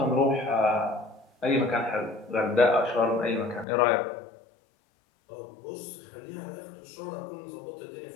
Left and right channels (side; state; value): right; drops out; at 3.7 s